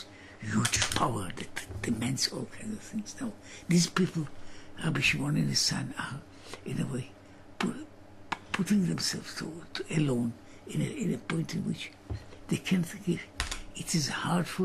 huge power that demands all kinds of things. Now, these people, Rabbi Shimon and his son, are, in a way, putting themselves to alone in a point in which they can't think. It is hard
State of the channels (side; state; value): both; identical; correlation 1.00